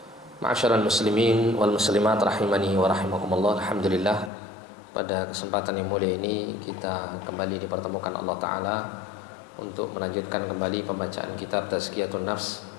Ma'asyiral muslimin wal muslimat rahimani wa rahimakumullah. Alhamdulillah, pada kesempatan yang mulia ini kita kembali dipertemukan Allah Ta'ala untuk melanjutkan kembali pembacaan kitab Tazkiyatun Nafs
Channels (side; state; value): right; drops out; at 4.3 s